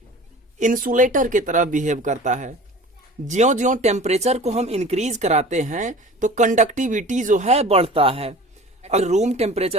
इंसुलेटर की तरह बिहेव करता है। ज्यों ज्यों टेम्परेचर को हम इंक्रीज कराते हैं तो कंडक्टिविटी जो है बढ़ता है। अगर रूम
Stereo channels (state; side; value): normal; both; correlation 0.41